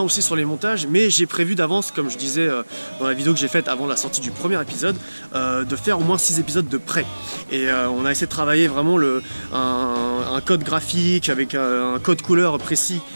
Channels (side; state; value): both; inverted; correlation -1.00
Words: aussi sur les montages, mais j'ai prévu d'avance, comme je disais dans la vidéo que j'ai faite avant la sortie du premier épisode, de faire au moins 6 épisodes de près. Et on a essayé de travailler vraiment un code graphique avec un code couleur précis,